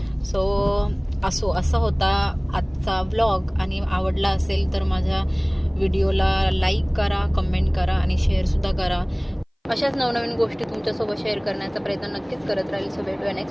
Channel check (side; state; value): both; identical; correlation 1.00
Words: सो असा होता आजचा व्लॉग. आणि आवडला असेल तर माझ्या व्हिडिओला लाईक करा, कमेंट करा आणि शेअर सुद्धा करा. अशाच नवनवीन गोष्टी तुमच्यासोबत शेअर करण्याचा प्रयत्न नक्कीच करत राहील. सो भेटूया